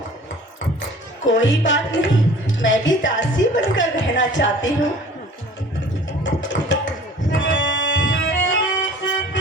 कोई बात नहीं, मैं भी दासी बनकर रहना चाहती हूँ।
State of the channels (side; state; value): both; normal; correlation 0.47